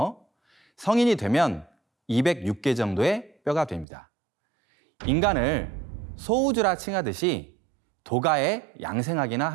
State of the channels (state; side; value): drops out; left; at 3.9 s